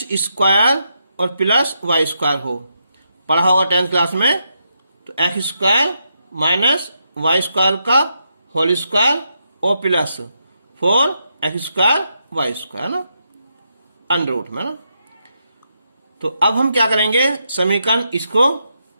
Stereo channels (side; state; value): both; inverted; correlation -0.82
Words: स्क्वायर और प्लस वाई स्क्वायर हो, पढ़ा होगा 10th क्लास में। तो X square minus Y square का होल स्क्वायर और plus 4x square Y square ना, अंडर रूट में ना। तो अब हम क्या करेंगे, समीकरण इसको